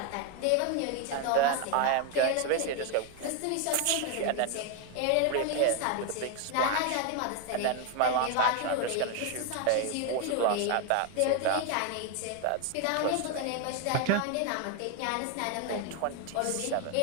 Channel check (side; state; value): both; different; correlation 0.01